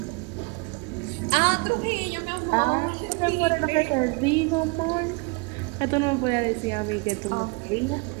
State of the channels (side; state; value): left; quieter; 29.3 dB